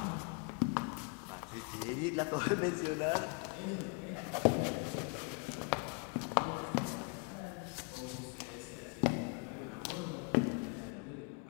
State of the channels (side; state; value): right; quieter; 33.7 dB